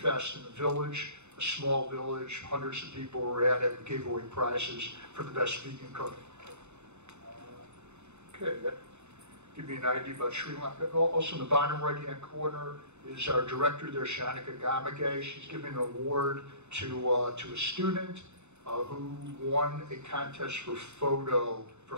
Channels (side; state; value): left; late; 0.82 ms